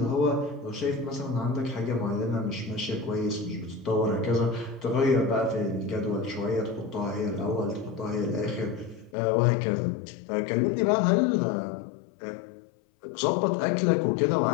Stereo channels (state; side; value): drops out; right; at 9.2 s